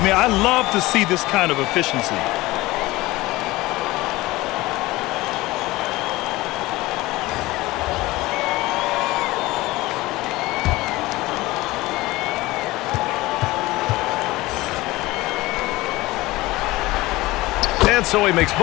mean, I love to see this kind of efficiency. And so he makes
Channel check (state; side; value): quieter; right; 19.5 dB